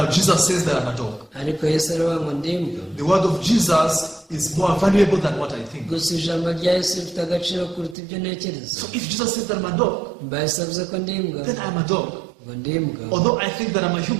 Jesus says that I'm a dog. Ariko Yesu aravuga ngo ndi imbwa. The word of Jesus is more valuable than what I think. Gusa ijambo rya Yesu rifite agaciro kuruta ibyo ntekereza. So if Jesus says that I'm a dog, Mba Yesu avuze ko ndi imbwa, then I'm a dog. ngo ndi imbwa. Although I think that I'm a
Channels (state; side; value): drops out; left; at 8.0 s